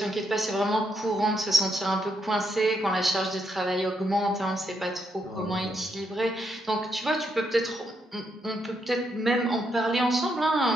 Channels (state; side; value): normal; both; correlation 0.78